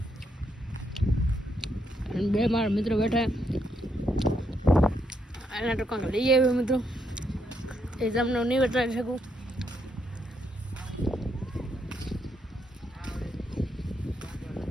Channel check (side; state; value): both; normal; correlation 0.77